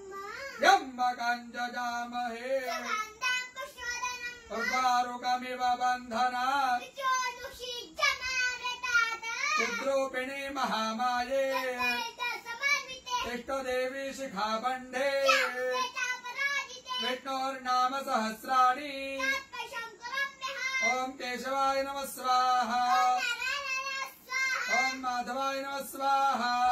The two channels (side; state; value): both; identical; correlation 1.00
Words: यम्मकञ्जजामहे उर्वारुकमिव बन्धनात् चिद्रूपिणी महामाये इष्टदेवी शिखाबन्धे विष्णोर्नाम सहस्राणि ओम केशवाय नमः स्वाहा ओम माधवाय नमः स्वाहा